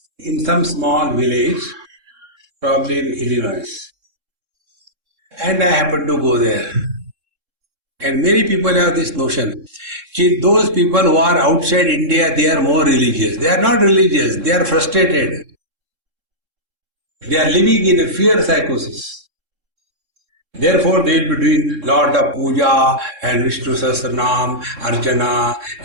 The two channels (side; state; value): left; late; 3.7 ms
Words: in some small village, probably in Illinois. And I happened to go there. And many people have this notion. See, those people who are outside India, they are more religious. They are not religious, they are frustrated. They are living in a fear psychosis. Therefore, they will be doing lot of puja and Vishnu Sahasranam, Archana